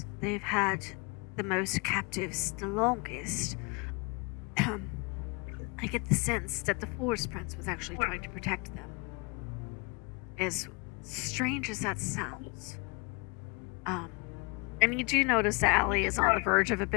they've had the most captives the longest. I get the sense that the forest prince was actually trying to protect them. As strange as that sounds. And you do notice that Allie is on the verge of a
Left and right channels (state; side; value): quieter; right; 29.9 dB